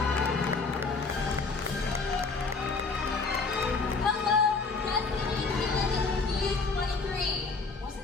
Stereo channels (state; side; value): quieter; right; 4.2 dB